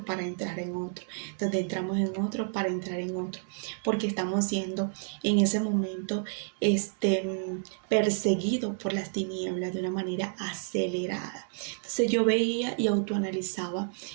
para entrar en otro, donde entramos en otro para entrar en otro, porque estamos siendo en ese momento perseguidos por las tinieblas de una manera acelerada. Entonces yo veía y autoanalizaba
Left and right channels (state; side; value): silent; left; 58 dB below the other